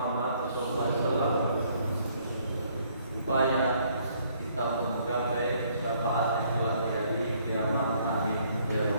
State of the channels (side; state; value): both; inverted; correlation -0.65